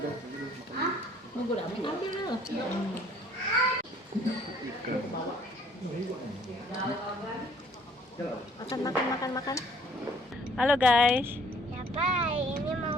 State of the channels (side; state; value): both; normal; correlation 0.58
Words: Nunggu dah, ambil dulu. Ikan. Makan. Halo guys. Ya baik, ini mau